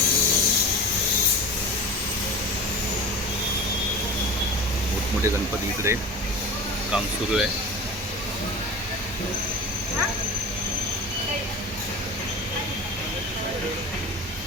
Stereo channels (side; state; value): both; normal; correlation 0.33